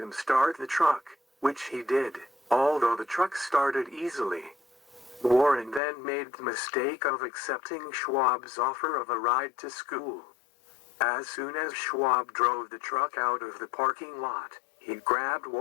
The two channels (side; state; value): right; drops out; at 5.8 s